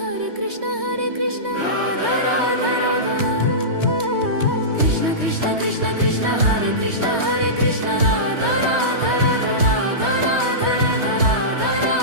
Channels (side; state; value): left; late; 3.2 ms